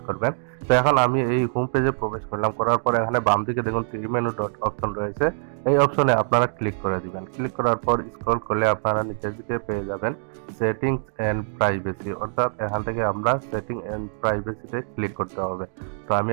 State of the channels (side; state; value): left; silent; digital silence